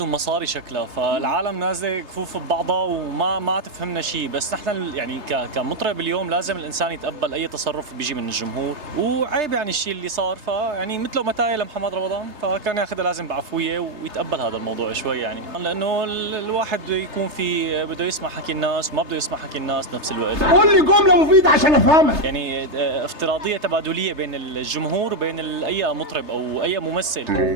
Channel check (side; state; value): left; late; 3.3 ms